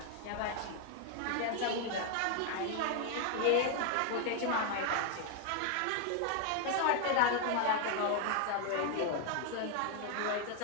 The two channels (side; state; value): both; different; correlation 0.00